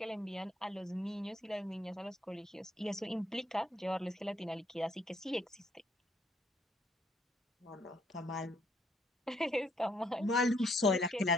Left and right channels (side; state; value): both; normal; correlation 0.70